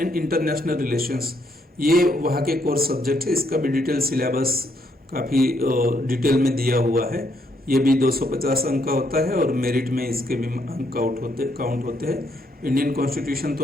international relations, ये वहाँ के कोर्स सब्जेक्ट है। इसका भी डिटेल सिलेबस काफ़ी डिटेल में दिया हुआ है। ये भी 250 अंक का होता है और मेरिट में इसके भी अंक काउंट होते हैं। इंडियन कॉन्स्टिट्यूशन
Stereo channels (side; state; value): both; normal; correlation 0.73